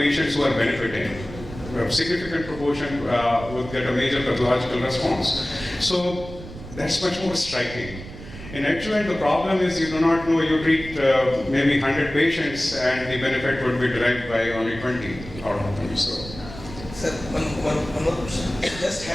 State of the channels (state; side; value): noise; right; rumble, 13 dB below the sound